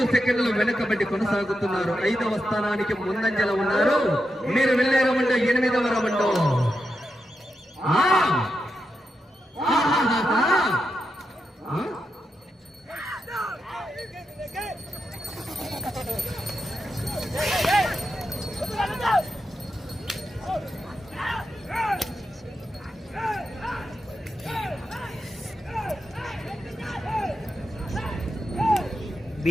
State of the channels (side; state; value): both; normal; correlation 0.87